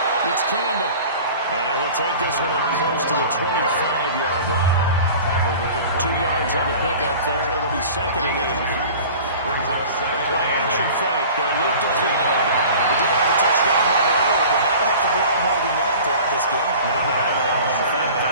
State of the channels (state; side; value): inverted; both; correlation -0.41